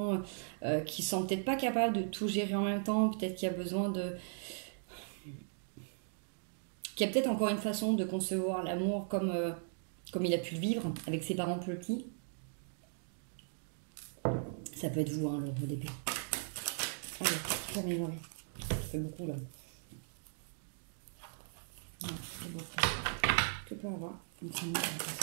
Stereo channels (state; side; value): silent; left; digital silence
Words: peut-être pas capable de tout gérer en même temps, peut-être qu'il a besoin qui a peut-être encore une façon de concevoir l'amour comme il a pu le vivre avec ses parents plus petits. Ça peut être vous, le roi d'épée. Allez, je vais m'améliorer. Ça fait beaucoup là. Ah, c'est beau. Que peut avoir une famille avec ça?